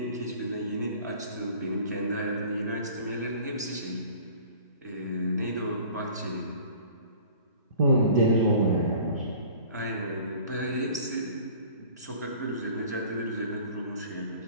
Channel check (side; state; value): both; inverted; correlation -0.47